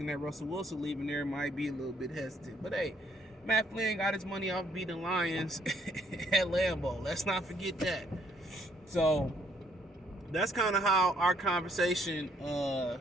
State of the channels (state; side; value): normal; both; correlation 0.67